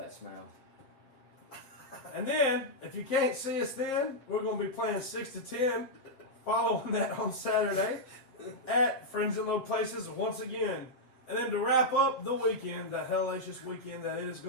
smell. And then, if you can't see us then, we're going to be playing 6 to 10. Following that on Saturday at Friends in Low Places once again. And then to wrap up the weekend, the hellacious weekend that it is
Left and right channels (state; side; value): late; right; 7.9 ms